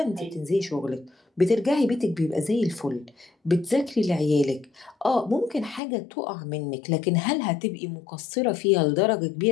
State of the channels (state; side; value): drops out; right; at 5.8 s